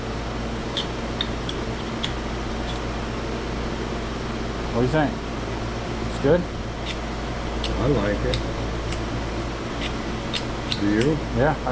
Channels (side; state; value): both; identical; correlation 1.00